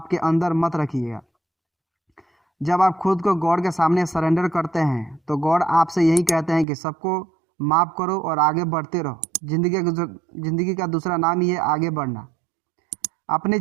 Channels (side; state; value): left; drops out; at 6.7 s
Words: अंदर मत रखिएगा। जब आप खुद को गॉड के सामने सरेंडर करते हैं तो गॉड आपसे यही कहते हैं कि सबको माफ़ करो और आगे बढ़ते रहो। जिंदगी का दूसरा नाम ही है आगे बढ़ना। अपनी